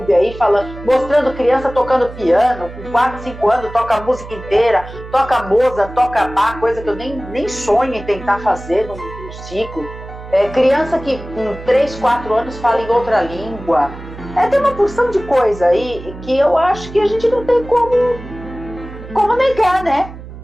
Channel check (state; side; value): noise; right; hum, 14 dB below the sound